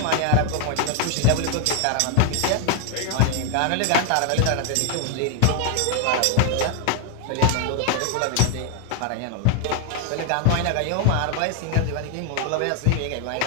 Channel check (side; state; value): both; different; correlation 0.00